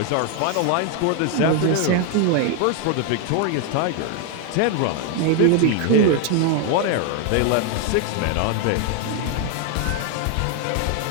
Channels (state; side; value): different; both; correlation 0.01